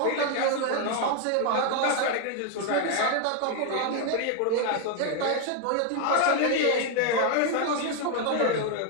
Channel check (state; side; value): different; both; correlation 0.01